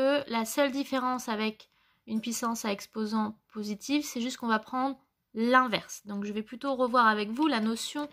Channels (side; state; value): both; identical; correlation 1.00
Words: la seule différence avec une puissance à exposant positif, c'est juste qu'on va prendre l'inverse. Donc je vais plutôt revoir avec vous la notion